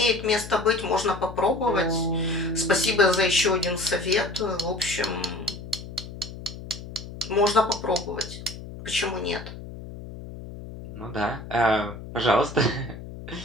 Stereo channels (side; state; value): left; noise; hum, 12 dB below the sound